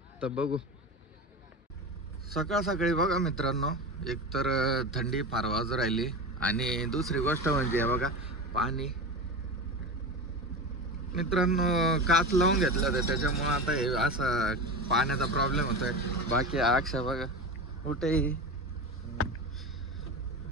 तर बघू. सकाळी बघा मित्रांनो, एकतर थंडी फार वाजू राहिली आणि दुसरी गोष्ट म्हणजे बघा पाणी. मित्रांनो काच लावून घेतलं होतं, त्याच्यामुळे आता हे असा पाण्याचा प्रॉब्लेम होतोय. बाकी अक्षा बघा कुठेही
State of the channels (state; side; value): normal; both; correlation 0.25